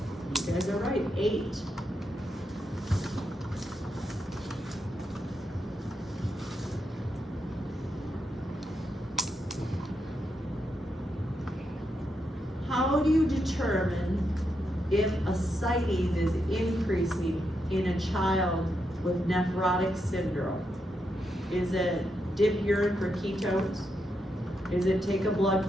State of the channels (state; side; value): normal; both; correlation 0.83